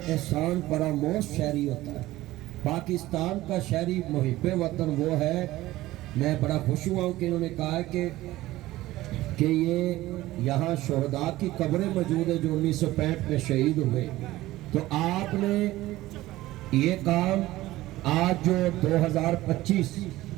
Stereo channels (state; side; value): quieter; left; 16.9 dB